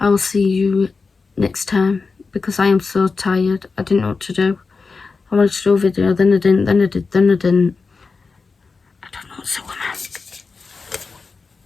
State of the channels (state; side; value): quieter; right; 4.4 dB